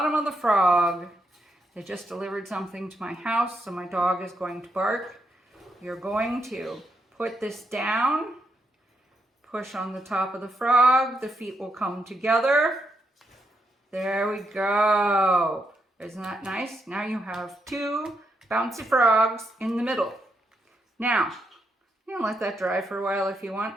of the frog. They just delivered something to my house, so my dog is going to bark. You're going to put this down, push on the top of the frog, the feet will come together. There we go. Isn't that nice? Now you have 2 bouncy frogs in the middle. Now, You can let that dry for a while if you want,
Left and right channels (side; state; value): both; normal; correlation 0.80